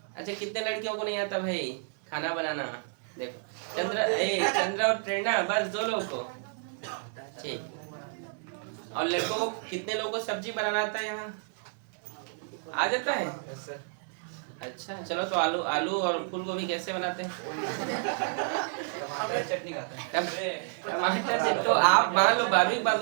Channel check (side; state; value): left; silent; 57 dB below the other